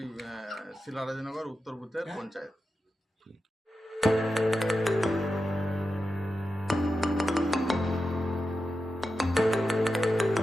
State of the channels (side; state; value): both; normal; correlation 0.90